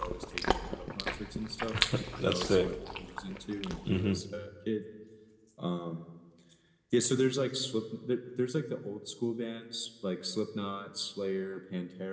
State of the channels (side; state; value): both; identical; correlation 1.00